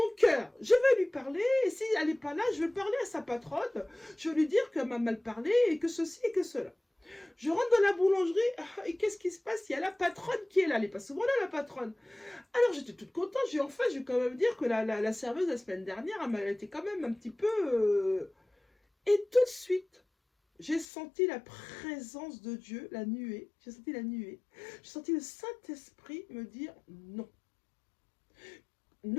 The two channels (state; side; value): drops out; right; at 20.9 s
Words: cœur, je vais lui parler, et si elle n'est pas là, je vais parler à sa patronne, je vais lui dire qu'elle m'a mal parlé, et que ceci et que cela. Je rentre dans la boulangerie, et qu'est-ce qui se passe? Il y a la patronne qui est là, elle n'est pas souvent là, la patronne. Alors j'étais toute contente, je vais quand même dire que la serveuse la semaine dernière, elle était quand même un petit peu... Et tout de suite, j'ai senti la présence de Dieu, la nuée. J'ai senti la nuée. J'ai senti le Saint-Esprit me dire non.